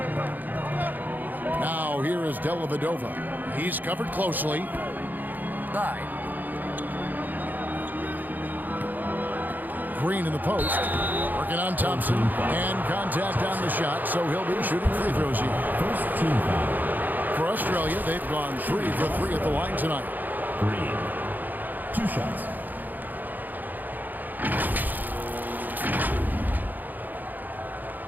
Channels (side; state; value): left; late; 0.085 ms